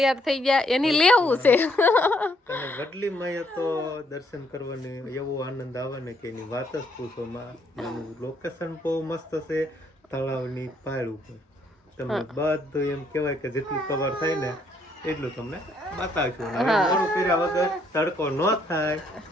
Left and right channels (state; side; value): normal; both; correlation 0.70